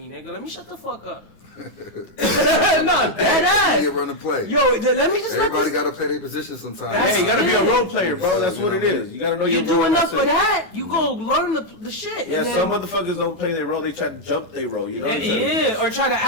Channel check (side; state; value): right; late; 9.8 ms